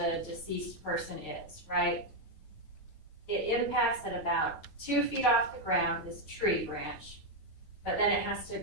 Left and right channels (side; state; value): right; late; 9.2 ms